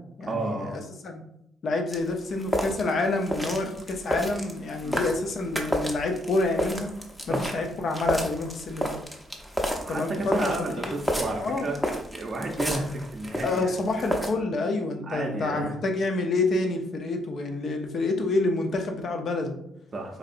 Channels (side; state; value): both; normal; correlation 0.72